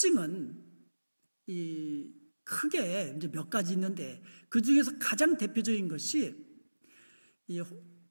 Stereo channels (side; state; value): both; inverted; correlation -1.00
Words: 크게 이제 몇 가지 있는데, 그 중에서 가장 대표적인 것이 이